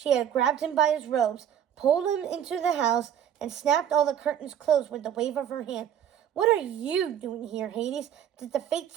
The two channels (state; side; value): quieter; left; 9.5 dB